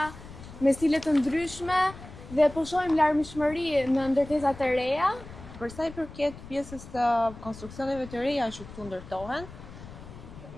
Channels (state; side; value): noise; left; rumble, 15 dB below the sound